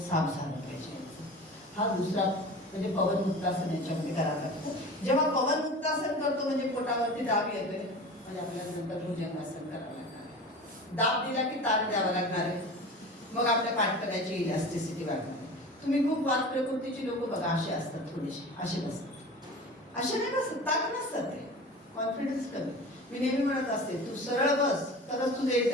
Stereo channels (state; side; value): normal; both; correlation 0.35